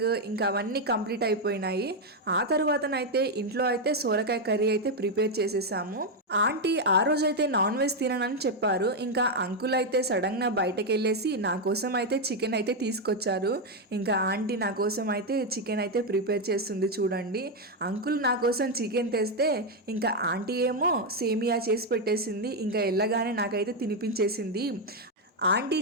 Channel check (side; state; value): both; normal; correlation 0.03